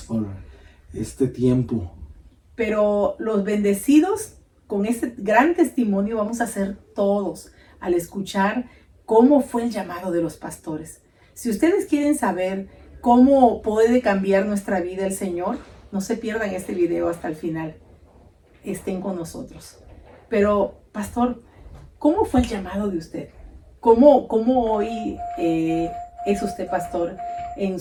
por este tiempo. Pero los bendecidos con este gran testimonio vamos a ser todos al escuchar cómo fue el llamado de los pastores. Si ustedes quieren saber cómo puede cambiar nuestra vida el Señor, no se pierdan este video hasta el final. Estén con nosotros. Pero, pastor, ¿cómo fue el llamado de usted? ¿Cómo hoy es usted pastor en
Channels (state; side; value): identical; both; correlation 1.00